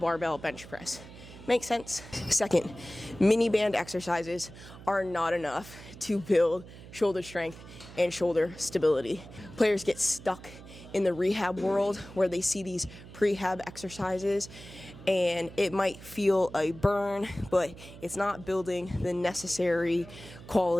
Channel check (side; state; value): right; noise; hum, 17 dB below the sound